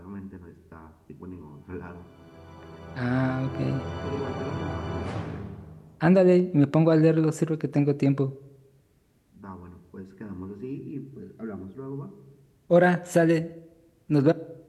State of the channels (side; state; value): both; identical; correlation 1.00